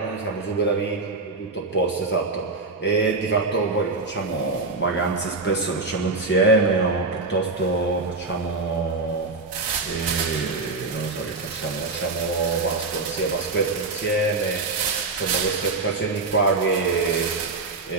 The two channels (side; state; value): left; quieter; 3.6 dB